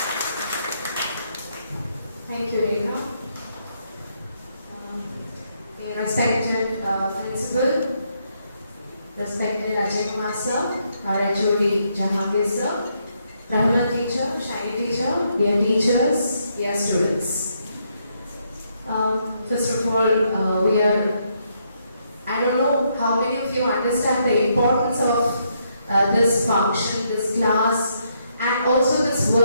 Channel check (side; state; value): both; inverted; correlation -0.75